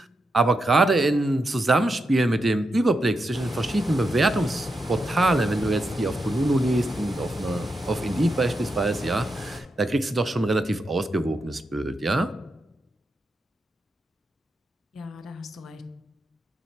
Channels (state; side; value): normal; both; correlation 0.86